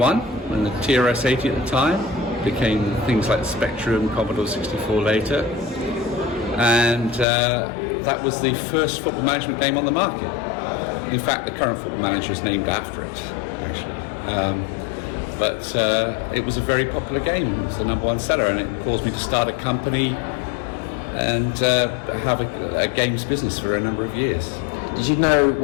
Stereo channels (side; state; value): right; drops out; at 7.2 s